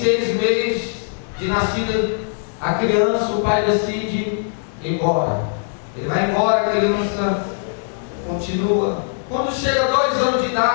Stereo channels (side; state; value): right; silent; digital silence